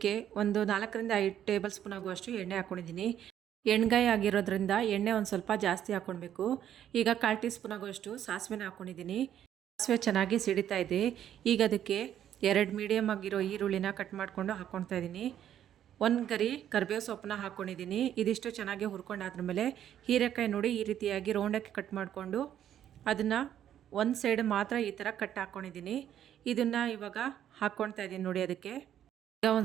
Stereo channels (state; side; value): quieter; left; 10.5 dB